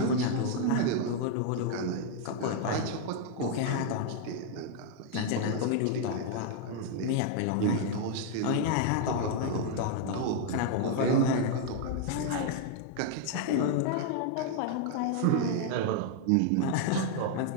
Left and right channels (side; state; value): both; different; correlation 0.00